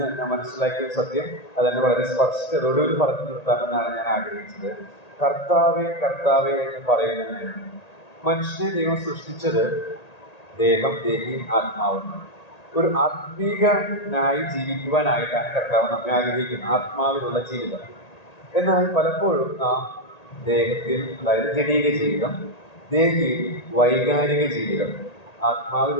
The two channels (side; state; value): right; late; 1.8 ms